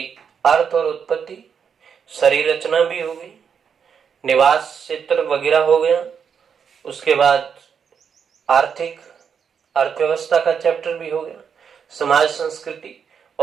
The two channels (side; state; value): left; quieter; 7.0 dB